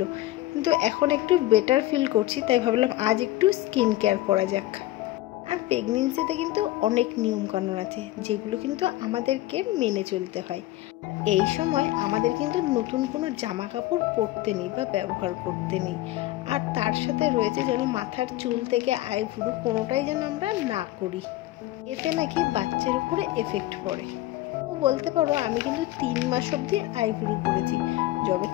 কিন্তু এখন একটু বেটার ফিল করছি, তাই ভাবলাম আজ একটু স্কিন কেয়ার করা যাক। আর প্রেগনেন্সিতে কিন্তু অনেক নিয়মকানুন আছে যেগুলো কিন্তু আমাদেরকে মেনে চলতে হয়। এই সময় আমাদের কিন্তু নতুন কোনো জামা কাপড় পরতে নেই বা ব্যবহার করতে নেই। আর তার সাথে রয়েছে যেন মাথার চুল থেকে আইব্রু কোনোটাই যেন আমরা না করি, এতে নাকি বাচ্চার উপরে এফেক্ট পড়ে। বলতে পারো আমি কিন্তু 3 মাস অবধি আইব্রো করেছি। যবে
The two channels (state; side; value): quieter; right; 16.3 dB